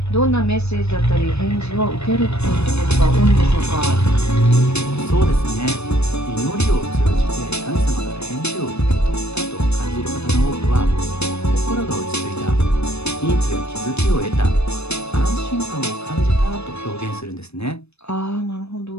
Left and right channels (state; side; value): late; right; 0.80 ms